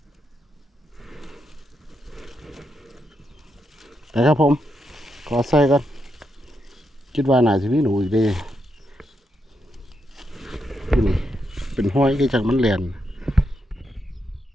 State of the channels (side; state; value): both; normal; correlation 0.82